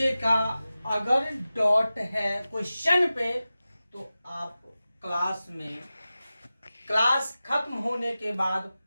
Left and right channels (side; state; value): both; inverted; correlation -0.95